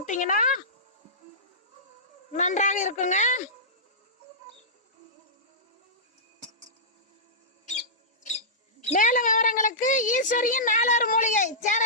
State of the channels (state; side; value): normal; both; correlation -0.17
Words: நன்றாக இருக்குங்க. மேலும் விவரங்களுக்கு ஈஸ்வரியின் 4 மூலிகை